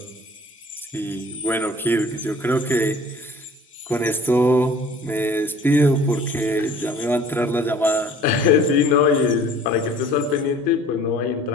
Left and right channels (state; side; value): normal; both; correlation 0.49